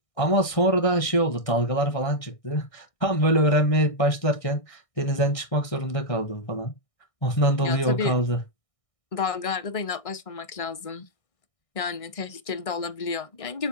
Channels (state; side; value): late; right; 1.6 ms